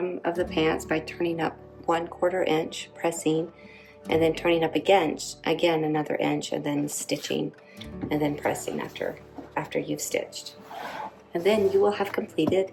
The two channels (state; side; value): identical; both; correlation 1.00